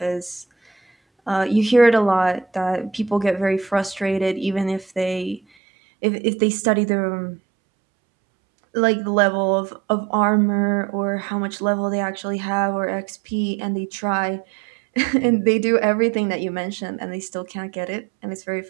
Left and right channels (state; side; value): drops out; left; at 5.4 s